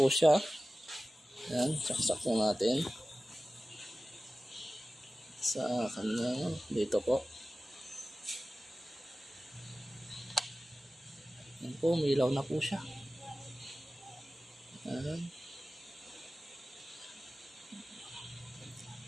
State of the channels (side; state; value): both; normal; correlation 0.96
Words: siya. Ayan, saksak po natin sa kanya dito po. Ayan po, umilaw na po siya. Ayan.